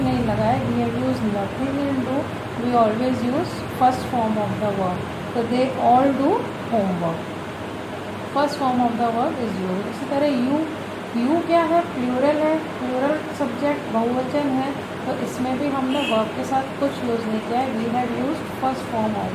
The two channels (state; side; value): identical; both; correlation 1.00